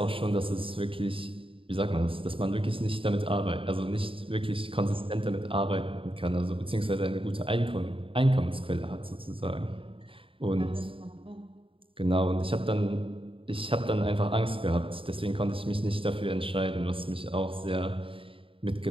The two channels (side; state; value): left; late; 0.26 ms